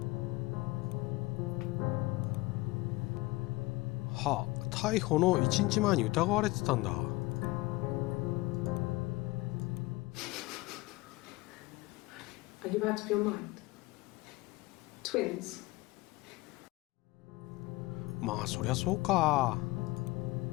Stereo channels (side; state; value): right; quieter; 21.1 dB